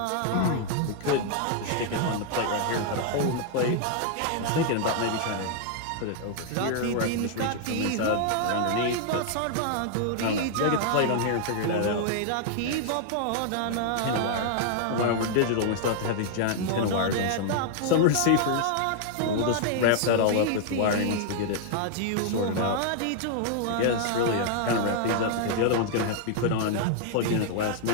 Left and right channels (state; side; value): different; both; correlation 0.00